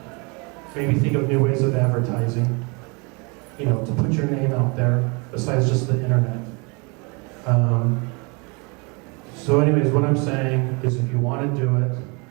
maybe think of new ways of advertising, to put your name out there besides just the internet. So anyways, what I'm saying is if you want to do it,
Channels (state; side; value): quieter; left; 30.6 dB